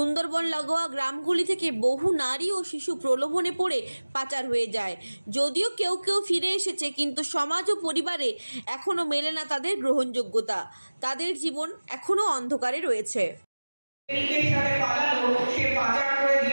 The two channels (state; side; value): inverted; both; correlation -1.00